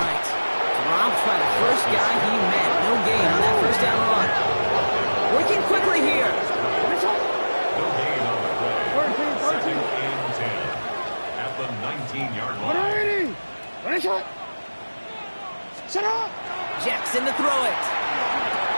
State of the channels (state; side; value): inverted; both; correlation -1.00